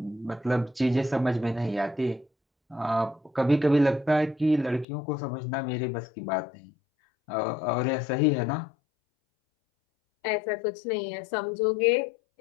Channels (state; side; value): drops out; right; at 4.9 s